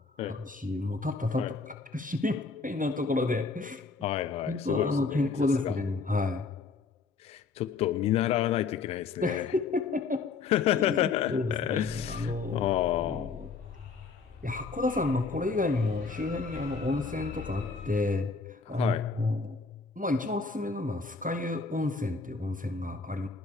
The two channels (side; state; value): right; quieter; 4.6 dB